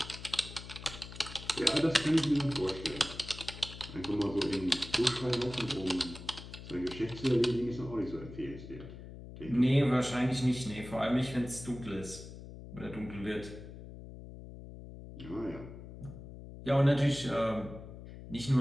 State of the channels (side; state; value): left; noise; hum, 13 dB below the sound